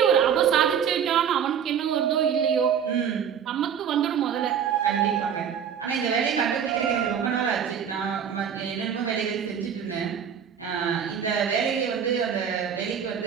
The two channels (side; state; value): left; quieter; 8.0 dB